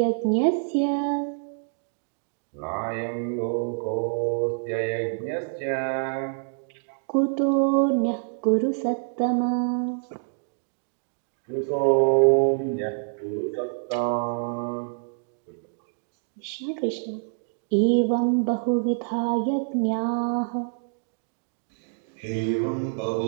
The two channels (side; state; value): left; silent; digital silence